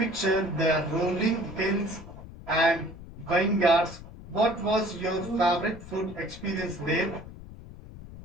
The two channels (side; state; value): left; noise; rumble, 15 dB below the sound